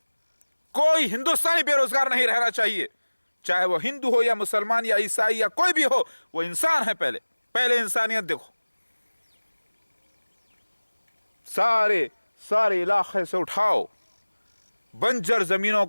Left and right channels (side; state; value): both; inverted; correlation -1.00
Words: कोई हिंदुस्तानी बेरोजगार नहीं रहना चाहिए, चाहे वो हिंदू हो या मुसलमान या ईसाई या कोई भी हो, वो इंसान है। पहले इंसानियत देखो। सारे इलाके से उठाओ बंजर जमीनों